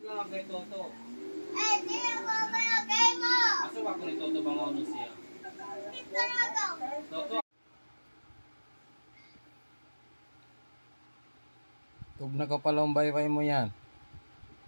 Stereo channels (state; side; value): inverted; both; correlation -1.00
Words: nga kay Toto. Eh, di ako mayagay mo! Asa ba ko ni Toto bang ano siya? Hindi talaga! Toto! Tug na ka palang baybay mo yan.